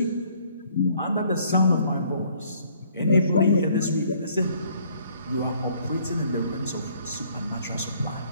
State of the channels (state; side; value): inverted; both; correlation -0.62